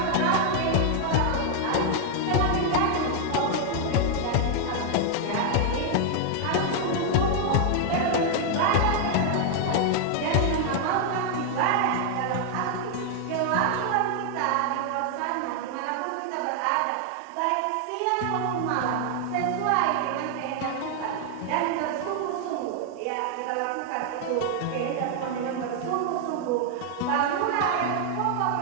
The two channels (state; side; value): different; both; correlation 0.00